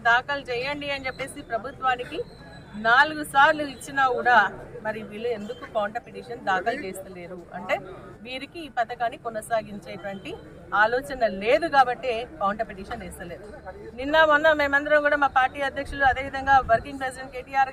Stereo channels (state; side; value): identical; both; correlation 1.00